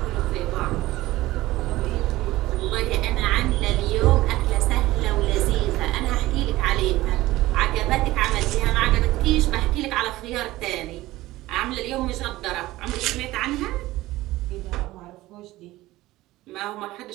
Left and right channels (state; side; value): quieter; left; 17.5 dB